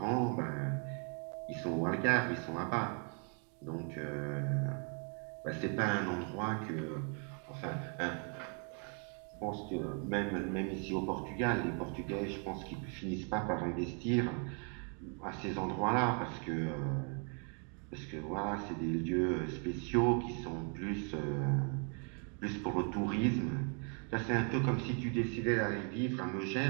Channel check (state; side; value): quieter; left; 39.4 dB